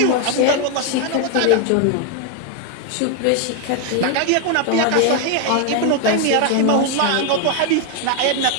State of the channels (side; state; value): both; different; correlation 0.01